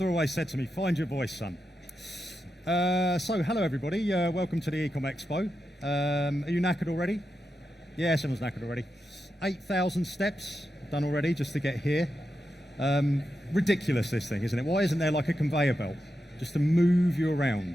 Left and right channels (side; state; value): both; normal; correlation 0.88